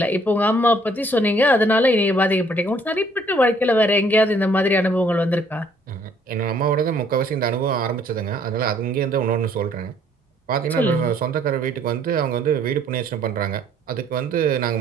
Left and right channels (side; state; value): both; normal; correlation 0.62